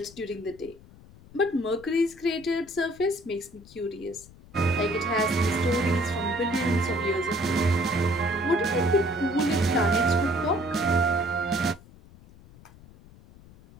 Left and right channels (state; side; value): noise; left; rumble, 22 dB below the sound